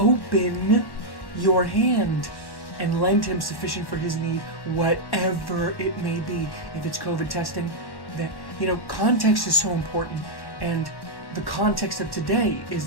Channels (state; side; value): late; right; 1.1 ms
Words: your hand and lend him sufficient for his need, whatever it may be. If it's COVID testing, that, you know, context is so important, and the context of today